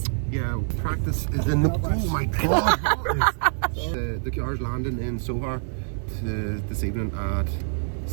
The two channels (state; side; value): silent; left; digital silence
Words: Yeah, practice is in the... Oh my God! The car's landing in Sohar this evening at